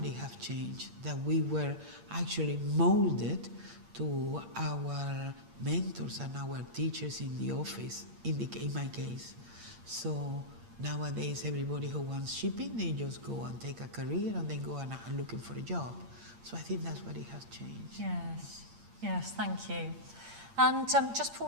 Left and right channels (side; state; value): left; late; 8.7 ms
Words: it has changed, that we were actually molded to our mentors and our teachers in the office, in my case. So nowadays, everybody who wants shipping, they just go and take a career and then go and looking for a job. So I think that's what it has changed. Yes, thank you. And just before